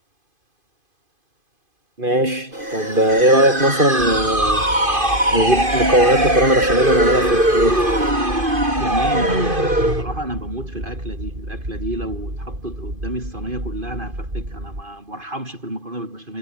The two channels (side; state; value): left; late; 2.5 ms